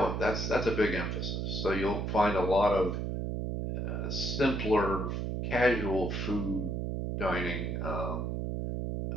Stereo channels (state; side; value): noise; right; hum, 2 dB below the sound